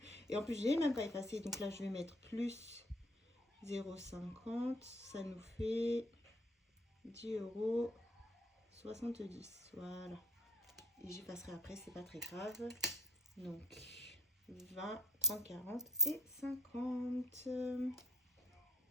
Et en plus, j'ai même pas effacé, donc là, je vais mettre plus 0,50, ça nous fait 10 € 70, voilà. Et j'y passerai après, c'est pas très grave. Donc 20, 30, 40 et 50.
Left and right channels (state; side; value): normal; both; correlation 0.58